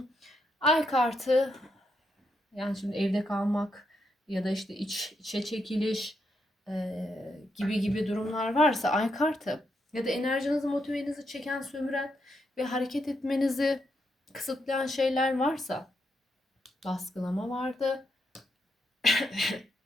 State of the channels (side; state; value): both; normal; correlation 0.80